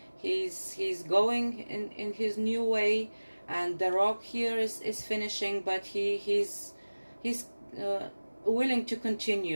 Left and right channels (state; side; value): inverted; both; correlation -1.00